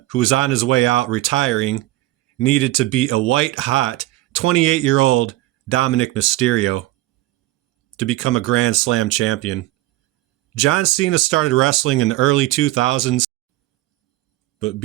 who was on his way out retiring, needed to beat a white-hot 28-year-old Dominik Mysterio to become a Grand Slam champion. John Cena started wrestling in the early 2000s, but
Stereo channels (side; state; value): left; quieter; 17.5 dB